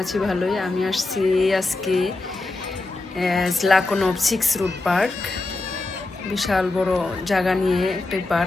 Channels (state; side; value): quieter; right; 3.2 dB